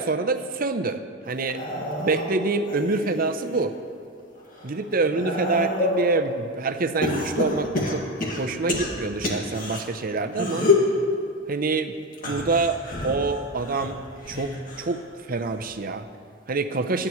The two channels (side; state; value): both; normal; correlation 0.15